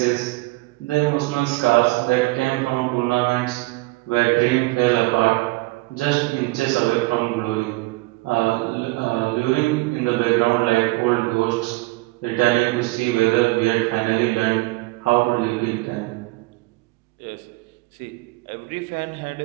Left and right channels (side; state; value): left; quieter; 22.6 dB